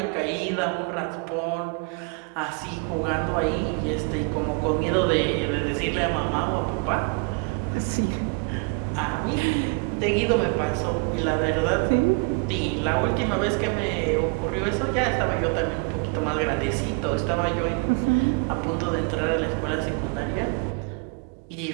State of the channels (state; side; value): quieter; left; 32.0 dB